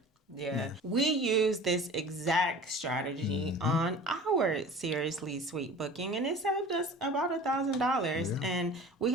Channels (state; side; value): normal; both; correlation 0.41